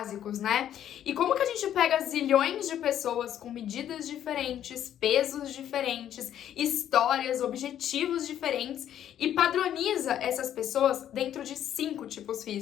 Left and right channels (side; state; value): right; quieter; 10.6 dB